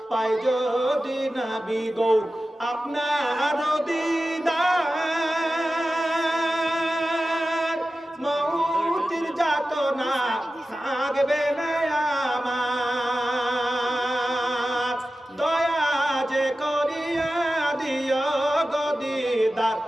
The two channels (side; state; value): both; normal; correlation 0.94